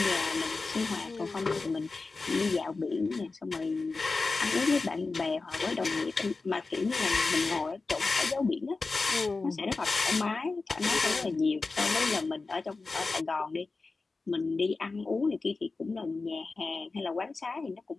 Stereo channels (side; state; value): right; quieter; 3.9 dB